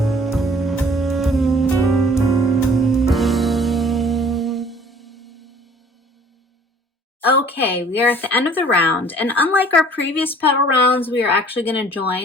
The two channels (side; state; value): both; normal; correlation 0.53